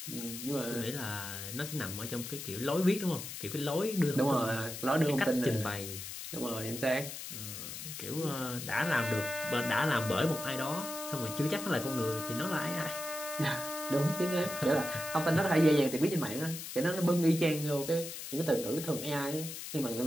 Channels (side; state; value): left; noise; hiss, 8 dB below the sound